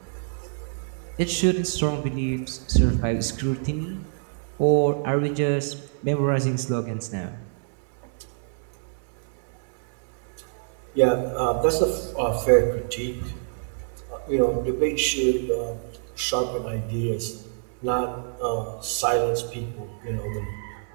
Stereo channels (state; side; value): silent; left; 61 dB below the other